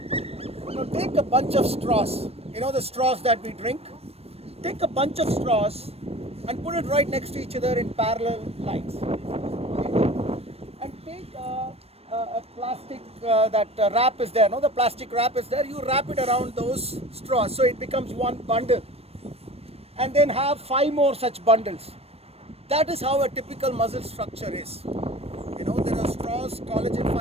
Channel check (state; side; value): late; left; 0.29 ms